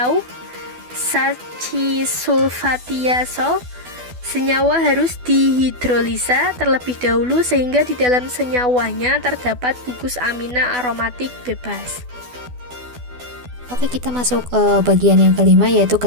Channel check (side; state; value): left; late; 12 ms